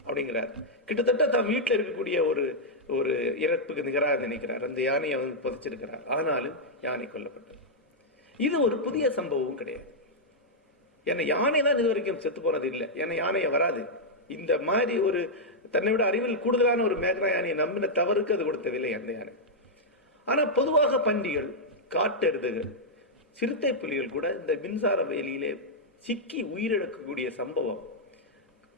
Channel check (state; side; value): normal; both; correlation -0.06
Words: அப்படிங்கிறார். கிட்டத்தட்ட தான் வீட்டில் இருக்கக்கூடிய ஒரு இறப்புக்கு நிகராக நினைக்கிறார். அந்த யானையை புதைச்சிருக்கிறார். ஆனாலும் யானை கொல்லப்பட்டது. இது ஒரு புதிய சம்பவம் கிடையாது. ஏன்னா யானை தான் இது வரைக்கும் செத்து போனது இல்லை. ஏன்னா யானையை வராது. இந்த மாதிரி ஒரு தன்னை விட அறிவில் கூடுதலான ஒரு மேக்னா யானையை நம்பின தவறுக்கு அது கொடுத்த விலை அந்த யானை. ஆனா பொதுவாக பன்றிகள், காட்டெருதுகள், சிறுத்தை புலிகள் கூட இந்த மின்சார வேலியிலே சிக்கி உயிரிழக்கக்கூடிய சம்பவம்